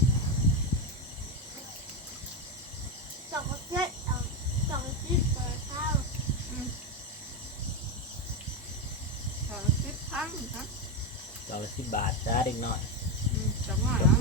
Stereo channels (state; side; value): normal; both; correlation 0.11